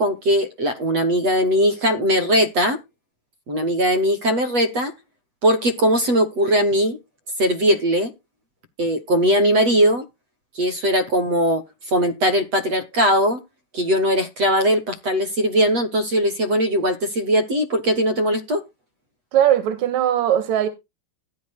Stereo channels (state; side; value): late; left; 8.1 ms